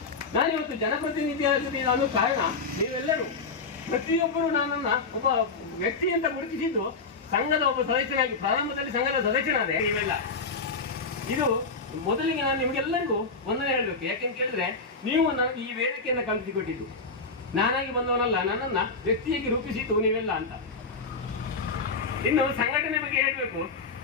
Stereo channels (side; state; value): right; quieter; 4.2 dB